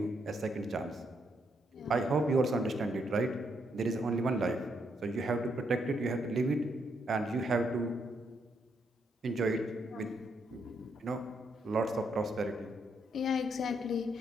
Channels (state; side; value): normal; both; correlation 0.76